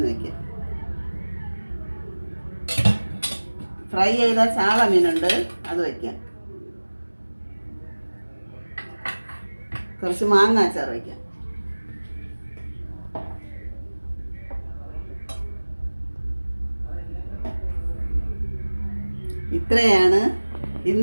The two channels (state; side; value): inverted; both; correlation -1.00